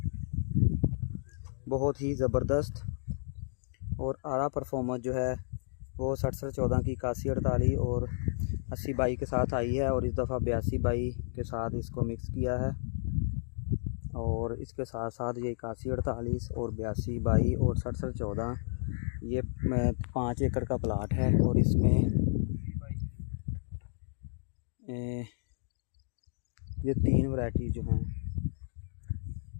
बहुत ही ज़बरदस्त और आला परफॉर्मेंस जो है वो 6714 की 8148 और 80-22 के साथ आई है और इस दफ़ा 82-22 के साथ इसको मिक्स किया है। और इसके साथ साथ ये 8148 और 82-22 और 6714 ये 5 एकड़ का प्लाट है और इसमें ये 3 वैरायटी जो हैं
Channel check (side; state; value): right; silent; digital silence